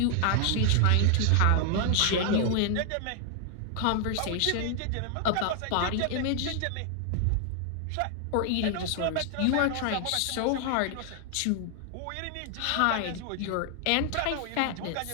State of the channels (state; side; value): different; both; correlation 0.00